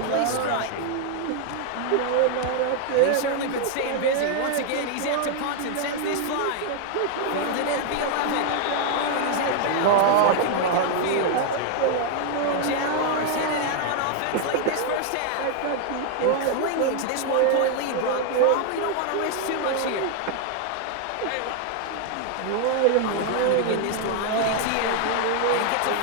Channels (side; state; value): both; different; correlation 0.00